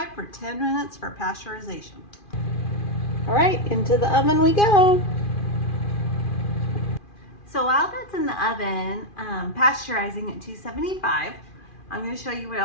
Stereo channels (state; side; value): late; right; 2.4 ms